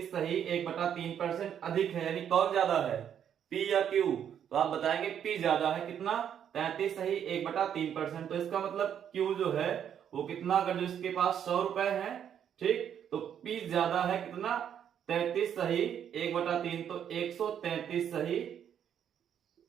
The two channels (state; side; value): quieter; left; 9.0 dB